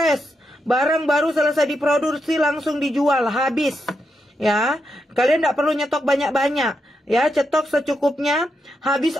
barang baru selesai diproduksi langsung dijual habis. Ya, kalian tidak perlu nyetok banyak-banyak. Ya, cetok secukupnya, habis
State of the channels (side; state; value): both; normal; correlation 0.84